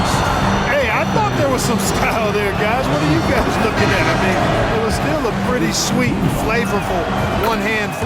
Hey, I thought there was some style there, guys. What are you guys looking at? I mean, it was still a pretty sweet, flavorful one-hand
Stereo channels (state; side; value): identical; both; correlation 1.00